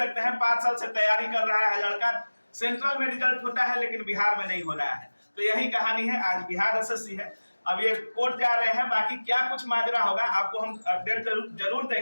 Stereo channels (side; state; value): both; inverted; correlation -1.00